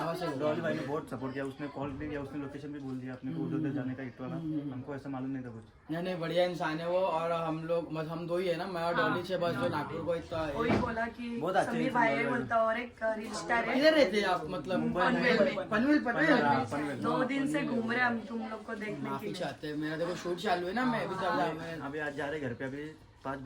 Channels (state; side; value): identical; both; correlation 1.00